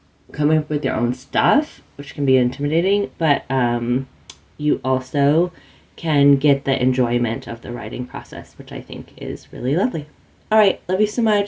coming up with your own stuff, which can be intimidating, but you also can get the enjoyment of the writing process, which I think is really lovely. All right, love you so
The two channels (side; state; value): both; identical; correlation 1.00